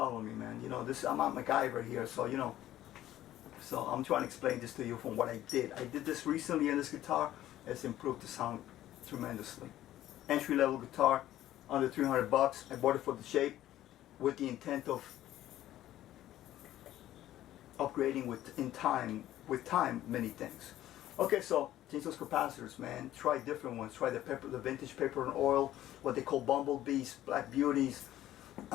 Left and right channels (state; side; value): quieter; right; 13.5 dB